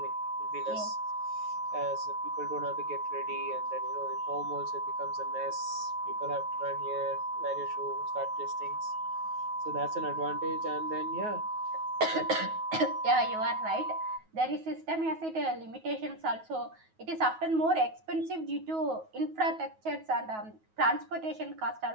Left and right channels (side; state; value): left; late; 9.3 ms